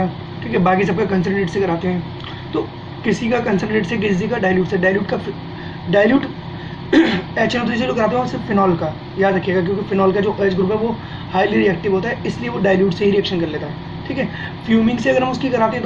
ठीक है, बाकी सबका कंसनट्रेट से कराते हैं। तो किसी का कंसनट्रेट से, किसी का डाइल्यूट से, डाइल्यूट HNO3 से जो कराते हैं वो सिर्फ फिनॉल का, याद रखिएगा, क्योंकि फिनॉल का जो OH ग्रुप है वो हाईली रिएक्टिव होता है, इसलिए वो डाइल्यूट से ही रिएक्शन कर लेता है। ठीक है, फ्यूमिंग से अगर हम उसकी कराते हैं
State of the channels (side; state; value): both; identical; correlation 1.00